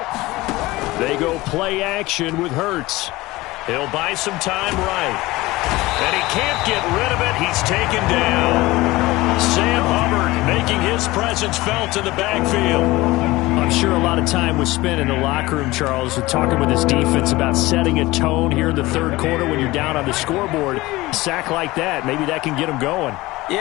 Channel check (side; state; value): right; quieter; 19.7 dB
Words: They go play action with Hurts. He'll buy some time right. And he can't get rid of it. He's taken down. Sam Hubbard making his presence felt in the backfield. I'm sure a lot of time was spent in the locker room, Charles, with talking with his defense about setting a tone here in the third quarter when you're down on the scoreboard. A sack like that, maybe that can get him going.